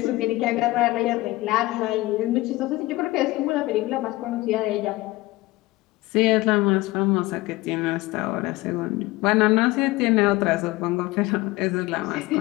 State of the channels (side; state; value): right; quieter; 19.8 dB